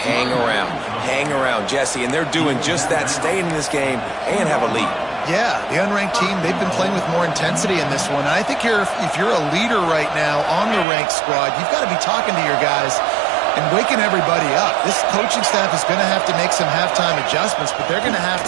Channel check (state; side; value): drops out; left; at 10.9 s